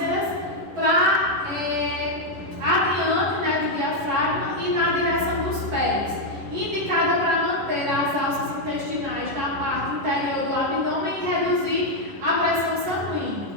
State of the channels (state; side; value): late; left; 11 ms